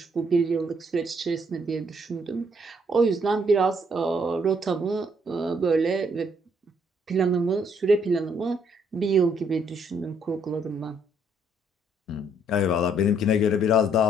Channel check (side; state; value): both; normal; correlation 0.68